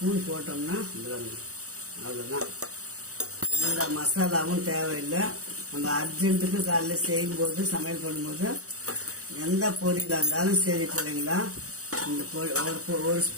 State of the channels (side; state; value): left; late; 0.65 ms